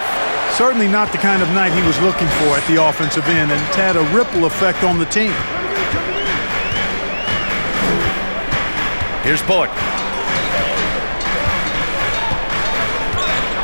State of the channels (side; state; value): both; inverted; correlation -1.00